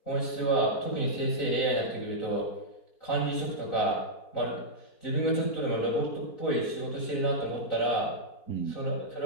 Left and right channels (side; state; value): right; late; 3.9 ms